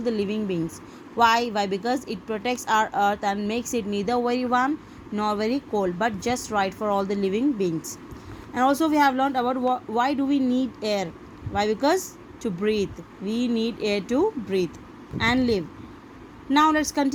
living beings. Why? Because it protects our earth and makes it neither very warm nor very cold, but just right for all the living beings. And also we have learned about why do we need air. Why? Because to breathe, we need air to breathe and live. Now let's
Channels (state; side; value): identical; both; correlation 1.00